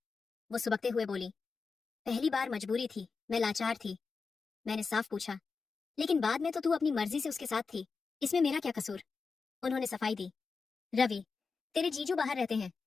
वो सुबकते हुए बोली, पहली बार मजबूरी थी, मैं लाचार थी। मैंने साफ पूछा, लेकिन बाद में तो तू अपनी मर्जी से उसके साथ थी, इसमें मेरा क्या कसूर? उन्होंने सफाई दी, रवि, तेरे जीजू बाहर रहते हैं,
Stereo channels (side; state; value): right; quieter; 4.8 dB